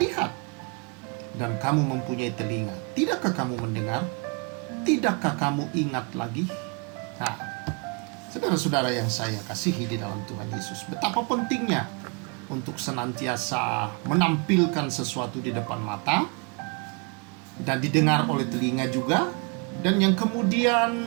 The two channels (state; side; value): quieter; left; 31.8 dB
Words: Dan kamu mempunyai telinga, tidakkah kamu mendengar? Tidakkah kamu ingat lagi? Nah, saudara-saudara yang saya kasihi di dalam Tuhan Yesus, betapa pentingnya untuk senantiasa menampilkan sesuatu di depan mata dan didengar oleh telinga juga, dan yang